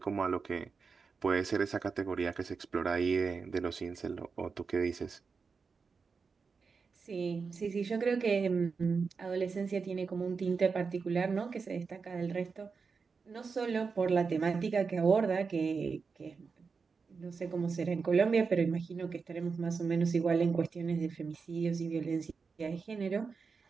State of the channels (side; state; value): left; quieter; 5.1 dB